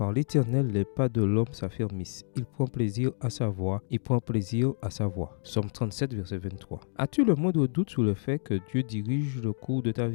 l'Éternel, les pas de l'homme s'affermissent. Il prend plaisir à sa voix. Il prend plaisir à sa voix. Psaume 37, verset 23. As-tu le moindre doute sur le fait que Dieu dirige le cours de ta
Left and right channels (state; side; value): silent; right; digital silence